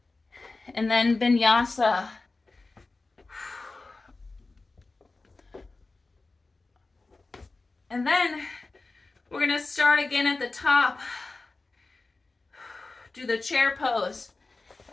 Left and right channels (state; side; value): quieter; right; 3.5 dB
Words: And then Vinyasa. And then we're going to start again at the top. Do the chair pose.